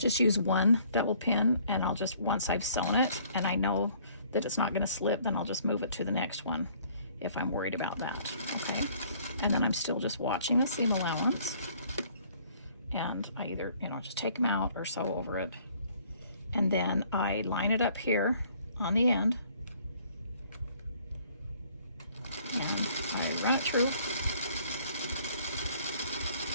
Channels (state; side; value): inverted; both; correlation -0.59